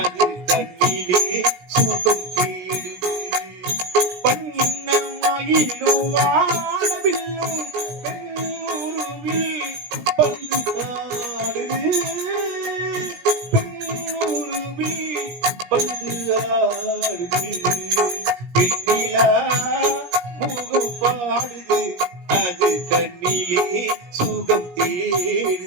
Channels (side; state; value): left; late; 17 ms